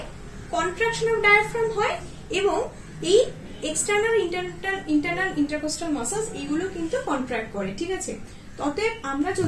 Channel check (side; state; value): both; identical; correlation 1.00